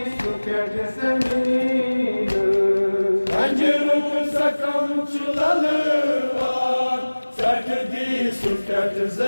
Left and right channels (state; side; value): inverted; both; correlation -1.00